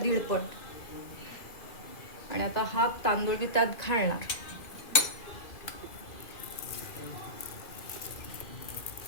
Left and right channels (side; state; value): right; late; 2.4 ms